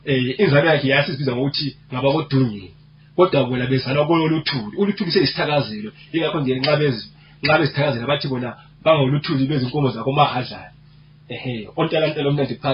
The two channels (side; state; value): both; identical; correlation 1.00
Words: inzalo yakhe yasibiza ngokuthi ngaba kodungeni kodwa bona bezalwa kololuthuli uluthuli selisithakazelo ingakho nje nxa bezithakazela bathi bona bangoluthuli bezinkomo zakho mahadlala ontalantela omnandi